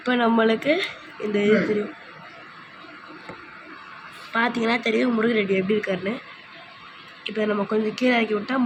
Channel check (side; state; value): both; identical; correlation 1.00